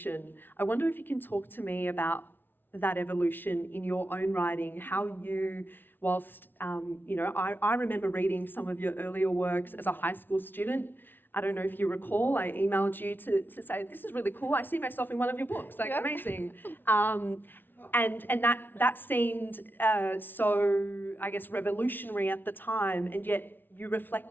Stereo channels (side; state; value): right; late; 0.097 ms